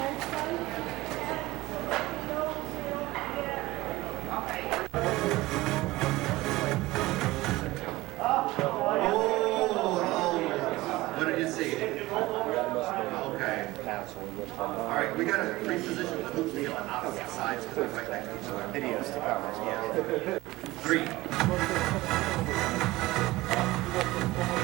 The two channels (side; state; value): left; quieter; 19.0 dB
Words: What did you see? Okay. All right, we got to reposition the hoops to get on opposite sides because they're right next to each other. Videos to cover. Yeah. 3.